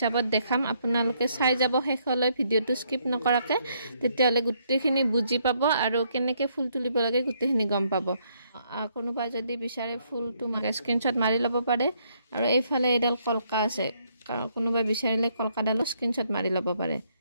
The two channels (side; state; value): both; inverted; correlation -0.72